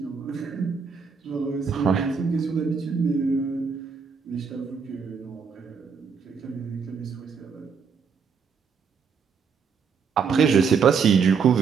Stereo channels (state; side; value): quieter; left; 6.0 dB